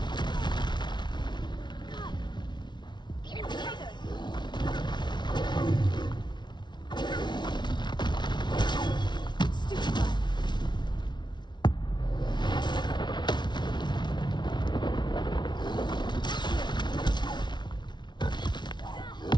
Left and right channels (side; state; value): right; late; 0.21 ms